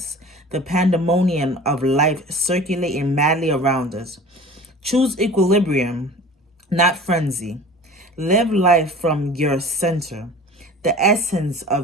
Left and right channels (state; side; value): normal; both; correlation 0.41